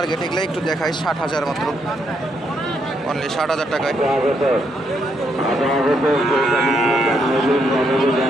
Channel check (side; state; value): both; normal; correlation 0.76